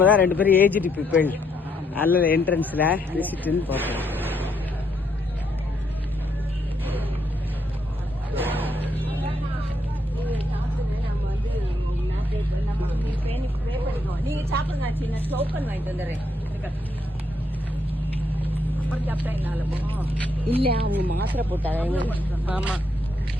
தான் 2 பேரும் ஏஜ்டு பீப்பிள். அதில் என்ட்ரன்ஸ்ல விசிட்னு பார்த்தோம். நீங்க சாப்பிடுங்க, டோக்கன் வாங்கிட்டு வந்துடுறேன். இல்ல அவங்க மாத்திரை போட்டாங்க. ஆமா.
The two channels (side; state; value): both; normal; correlation 0.75